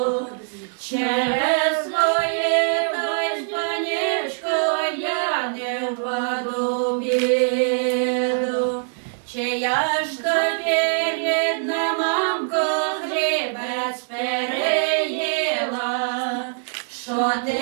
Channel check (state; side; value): silent; left; 63 dB below the other